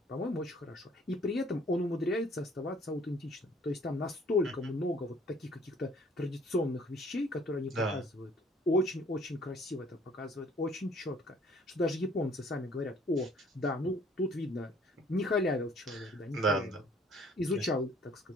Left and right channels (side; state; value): both; normal; correlation 0.57